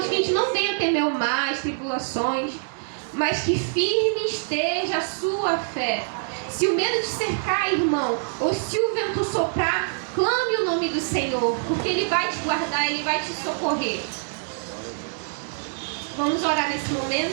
que a gente não venha temer o mar, as tribulações, mas que firme esteja a sua fé. Se o medo te cercar, irmão, ou se o vento soprar, clame o nome do Senhor, porque Ele vai te guardar, Ele vai te socorrer. Vamos orar nesse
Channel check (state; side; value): silent; left; digital silence